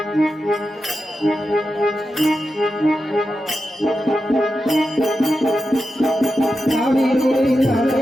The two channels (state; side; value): normal; both; correlation 0.90